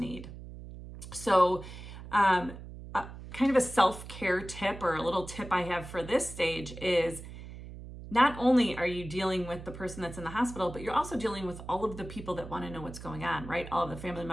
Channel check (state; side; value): noise; right; hum, 13 dB below the sound